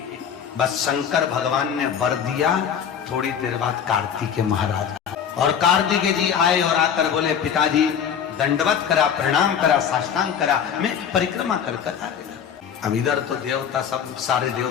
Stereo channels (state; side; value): quieter; right; 7.9 dB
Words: बस शंकर भगवान ने वर दिया। थोड़ी देर बाद कार्तिकेय महाराज और कार्तिकेय जी आए और आकर बोले, पिताजी दंडवत करा, प्रणाम करा, साष्टांग करा, मैं परिक्रमा कर कर आएगा। अब इधर तो देवता सब सारे